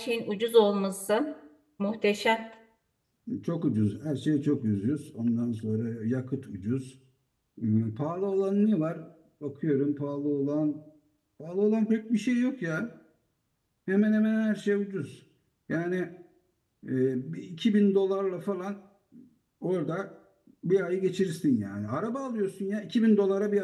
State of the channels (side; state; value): both; identical; correlation 1.00